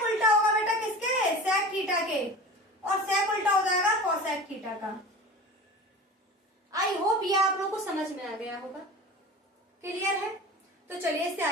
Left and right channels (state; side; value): normal; both; correlation 0.35